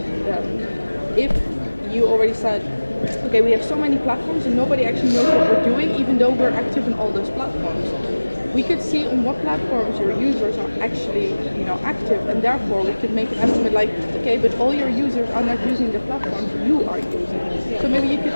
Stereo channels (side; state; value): both; inverted; correlation -1.00